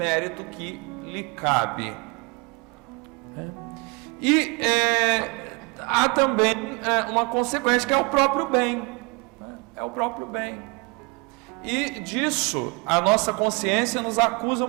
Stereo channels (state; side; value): quieter; left; 30.1 dB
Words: que lhe cabe. E há também uma consequência, que é o próprio bem, né? É o próprio bem. E disso a nossa consciência nos acusa